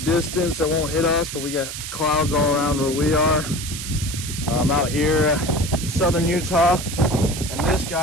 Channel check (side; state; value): right; noise; hiss, 8 dB below the sound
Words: that won't hit us, but we got clouds all around where we are. I'm out here, southern Utah, and this